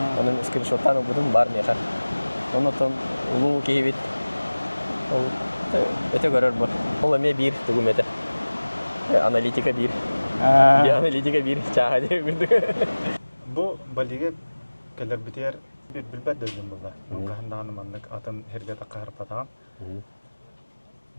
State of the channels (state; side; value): inverted; both; correlation -1.00